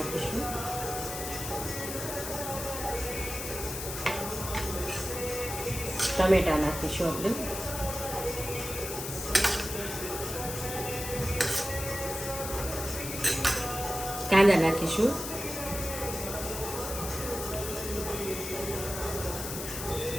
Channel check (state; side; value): noise; left; hiss, 6 dB below the sound